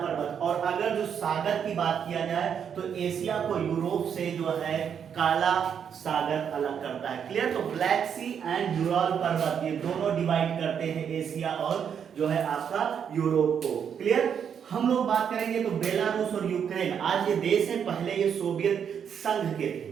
और अगर जो सागर की बात किया जाए तो एशिया को यूरोप से जो है काला सागर अलग करता है। क्लियर? तो ब्लैक सी एंड यूराल पर्वत ये दोनों डिवाइड करते हैं एशिया और जो है आपका यूरोप को। क्लियर? हम लोग बात करेंगे तो बेलारूस और यूक्रेन आज ये देश है, पहले ये सोवियत संघ के थे।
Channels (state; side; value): quieter; left; 7.8 dB